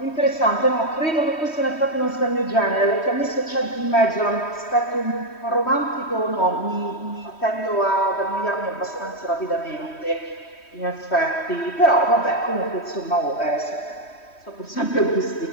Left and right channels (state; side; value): late; right; 3.1 ms